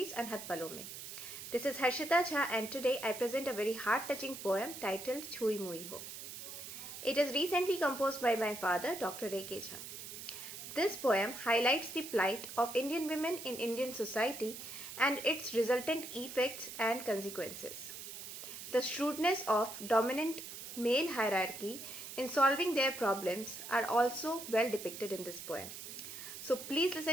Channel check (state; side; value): noise; right; hiss, 10 dB below the sound